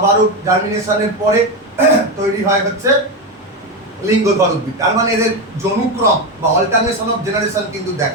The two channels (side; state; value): both; normal; correlation 0.13